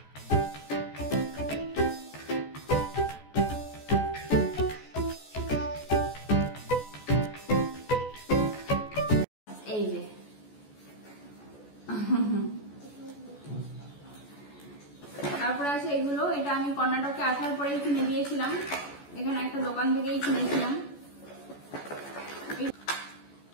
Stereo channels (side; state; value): right; late; 14 ms